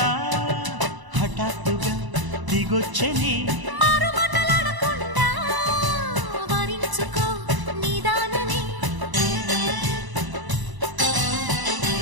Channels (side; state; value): left; late; 1.0 ms